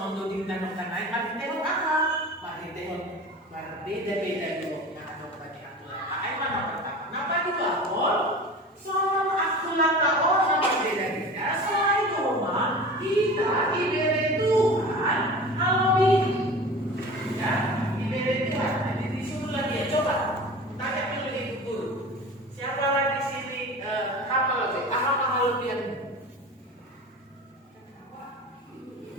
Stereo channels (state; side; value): normal; both; correlation 0.36